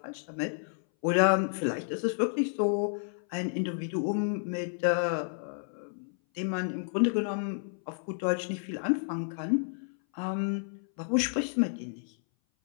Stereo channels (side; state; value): right; silent; 57 dB below the other